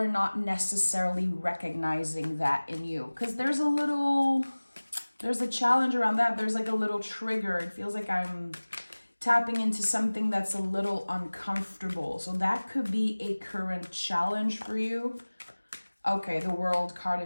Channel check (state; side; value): inverted; both; correlation -1.00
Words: not necessarily recognizing that in you? Because there's a challenge around that. There's like a little trigger. It feels like I'm tapping into something that's a little uncomfortable. So that could be a current challenge for you. Okay, the World card